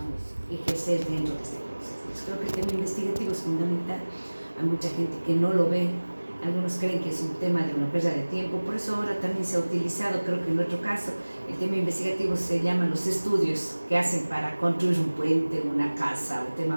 ejercer dentro de este proceso. Creo que el tema investigativo es fundamental. Hay mucha gente que no lo ve, algunos creen que es un tema de una pérdida de tiempo, por eso ahora también se ha utilizado, creo que en nuestro caso, el tema investigativo se llama los estudios que hacen para construir un puente, una casa, un tema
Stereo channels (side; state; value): both; inverted; correlation -1.00